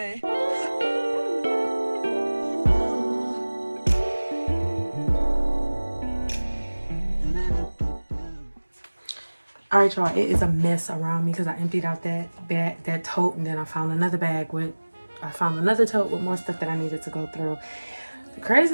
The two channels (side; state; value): both; inverted; correlation -1.00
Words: All right, y'all, it is a mess around me because I emptied out that tote, and then I found another tote with more stuff that I needed to go through. The